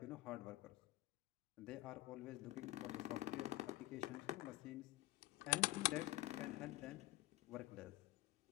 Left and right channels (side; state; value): right; quieter; 18.9 dB